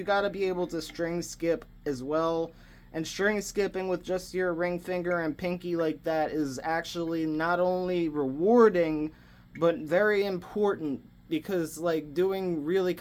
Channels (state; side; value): identical; both; correlation 1.00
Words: gotta be able to string skip as well. And string skipping with just your ring finger and pinky like that is actually not only rewarding, but very important, because like doing really